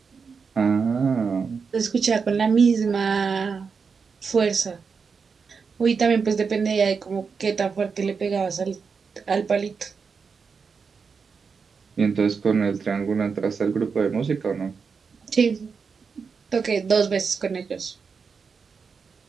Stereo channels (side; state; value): left; quieter; 5.5 dB